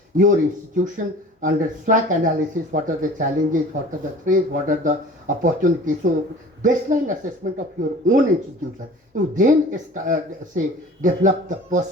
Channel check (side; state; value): both; normal; correlation 0.43